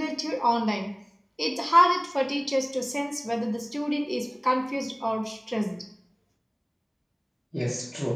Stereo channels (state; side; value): identical; both; correlation 1.00